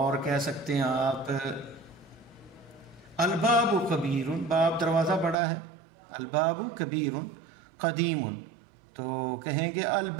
کہہ سکتے ہیں آپ الباب کبیر، باب دروازہ بڑا ہے. الباب کبیر. قدیم، تو کہیں گے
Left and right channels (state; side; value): drops out; left; at 5.4 s